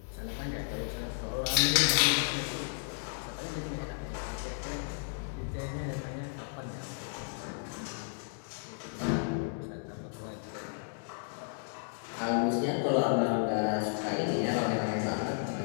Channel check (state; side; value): silent; right; digital silence